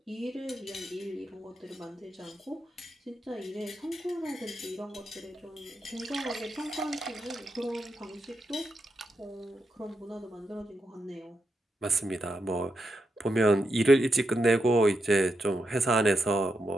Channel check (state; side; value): normal; both; correlation 0.84